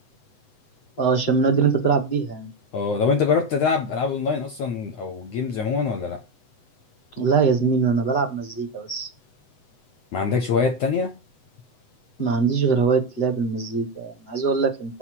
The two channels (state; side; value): late; right; 8.0 ms